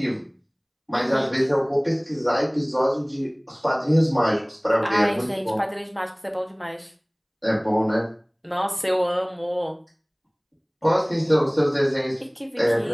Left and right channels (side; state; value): both; identical; correlation 1.00